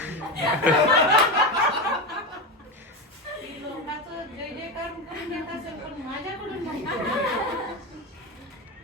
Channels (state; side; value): normal; both; correlation 0.17